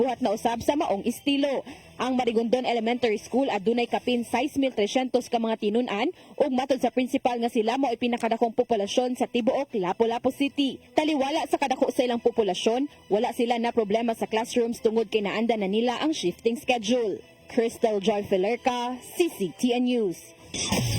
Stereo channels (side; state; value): both; identical; correlation 1.00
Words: na usab sa maong estilo. Ang Marigondon Elementary School adunay kapin 6,300 ka mga tinun-an ug matod sa principal nga sila mao ay pinakadakong populasyon sa tibuok Lapu-Lapu City. Taliwala sa kadako sa ilang populasyon, wala sila na problema sa classrooms tungod kay naanda na nila ang shifting schedule. Crystal Joy Filerca, CCTN News.